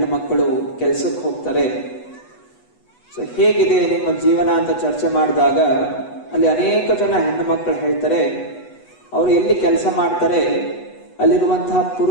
ಮಕ್ಕಳು ಕೆಲಸಕ್ಕೆ ಹೋಗ್ತಾರೆ, ಸೊ ಹೇಗಿದೆ ನಿಮ್ಮ ಜೀವನ ಅಂತ ಚರ್ಚೆ ಮಾಡಿದಾಗ ಅಲ್ಲಿ ಅನೇಕ ಜನ ಹೆಣ್ಣು ಮಕ್ಕಳು ಹೇಳ್ತಾರೆ, ಅವರು ಎಲ್ಲಿ ಕೆಲಸ ಮಾಡ್ತಾರೆ ಅಲ್ಲಿರುವಂತಹ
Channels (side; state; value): right; late; 8.1 ms